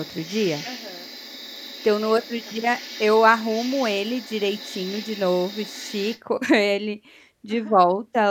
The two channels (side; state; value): both; identical; correlation 1.00